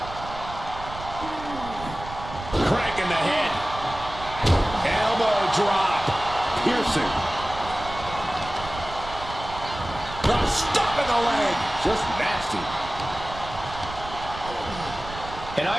Cranking the head. Elbow drop. Piercing. Stuck in the leg. Just nasty. An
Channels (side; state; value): right; noise; rumble, 12 dB below the sound